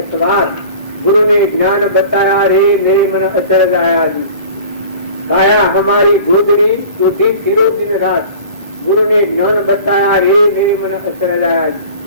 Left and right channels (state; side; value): inverted; both; correlation -0.41